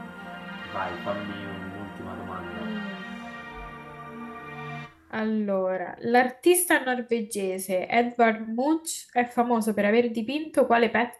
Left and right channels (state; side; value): identical; both; correlation 1.00